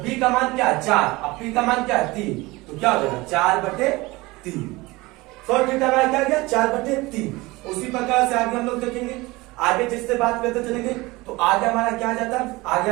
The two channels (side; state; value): left; quieter; 21.7 dB